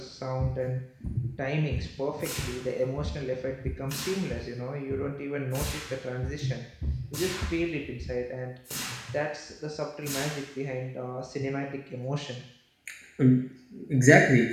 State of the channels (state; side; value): identical; both; correlation 1.00